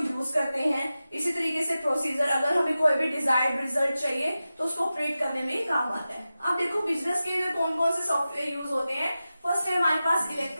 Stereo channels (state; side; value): inverted; both; correlation -0.94